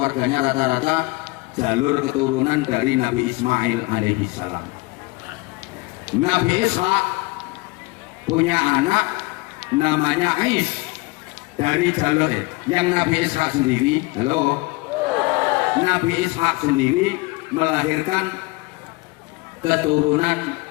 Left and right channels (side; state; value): right; quieter; 23.9 dB